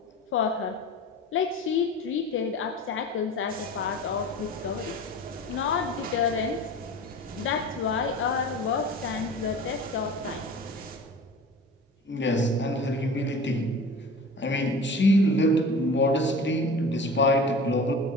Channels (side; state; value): both; normal; correlation 0.37